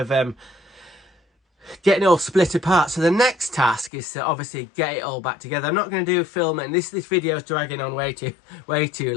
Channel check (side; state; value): right; drops out; at 3.9 s